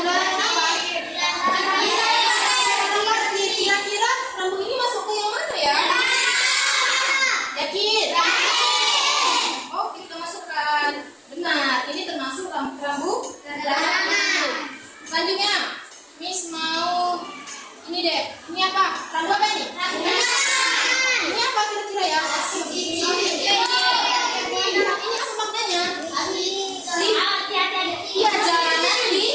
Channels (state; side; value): identical; both; correlation 1.00